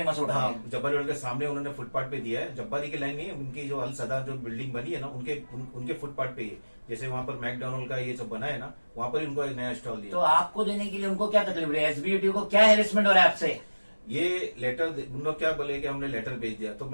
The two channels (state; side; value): inverted; both; correlation -1.00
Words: होटल हाँ है। जब्बारी होटल के सामने उन्होंने फुटपाथ पे दिया है। जब्बारी की लाइन नहीं है, उनकी जो अल सदा जो बिल्डिंग बनी है ना, उनके फुटपाथ पे ही है। जैसे वहाँ पर मैकडोनल्ड का ये सब बना है ना, वहाँ पर उनको एक नया स्टॉल दिया। तो आपको देने के लिए उनको क्या तकलीफ है? एसबीयूटी को क्या हेरेसमेंट हो रहा है आपसे? ये लेटर उन लोग क्या बोले कि हमने लेटर भेज दिया, तो